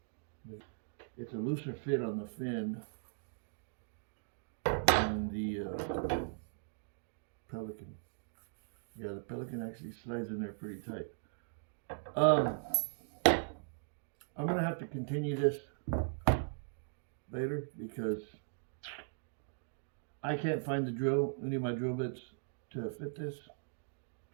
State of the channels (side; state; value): left; silent; digital silence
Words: It's a looser fit on the fin than the Pelican. Yeah, the Pelican actually slides in there pretty tight. I'm going to have to continue this later because I can't find any of my drill bits to fit this,